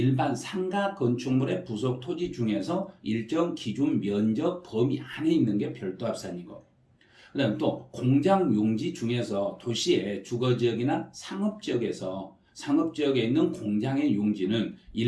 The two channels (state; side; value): identical; both; correlation 1.00